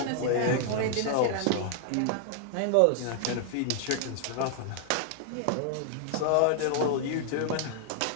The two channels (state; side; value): different; both; correlation 0.00